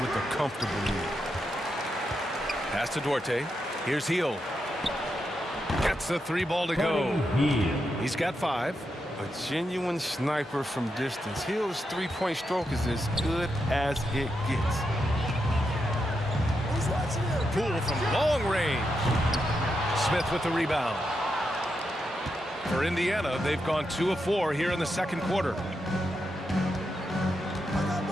with a comfortable lead. Pass to Duarte. Here's Hield. Gets the 3 ball to go. He's got 5. A genuine sniper from distance. Hill's 3-point stroke is as good as it gets. Poole from long range. Smith with the rebound. For Indiana, they've gone 2 of 4 here in the second quarter.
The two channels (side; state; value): both; normal; correlation 0.85